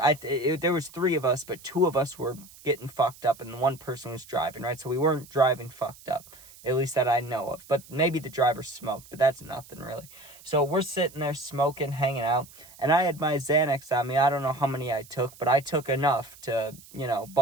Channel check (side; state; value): right; noise; hiss, 21 dB below the sound